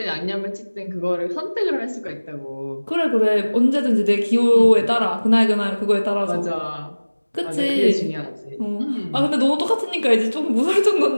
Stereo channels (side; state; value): both; inverted; correlation -1.00